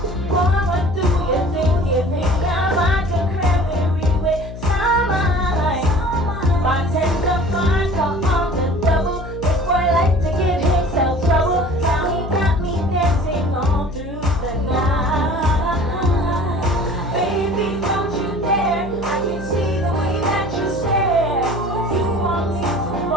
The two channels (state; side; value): noise; left; hum, 11 dB below the sound